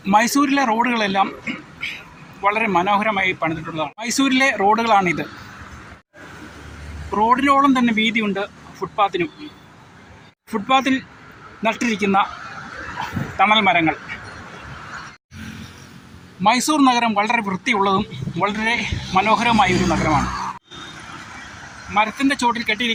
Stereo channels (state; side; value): identical; both; correlation 1.00